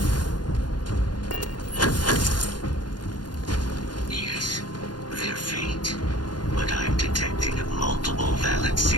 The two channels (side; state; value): right; late; 0.70 ms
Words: Yes, they're faint, but I'm detecting multiple valid